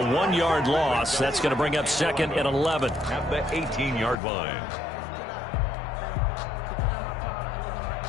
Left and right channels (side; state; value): right; drops out; at 4.2 s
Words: loss. That's going to bring up 2nd and 11. At the 18-yard line.